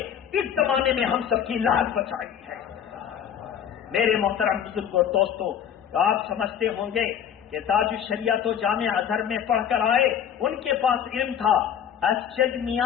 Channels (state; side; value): quieter; right; 8.9 dB